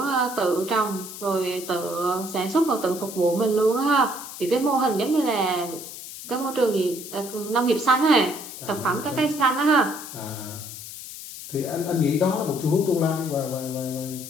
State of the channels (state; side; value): noise; left; hiss, 12 dB below the sound